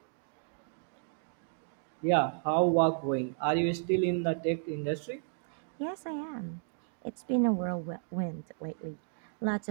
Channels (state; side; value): silent; left; digital silence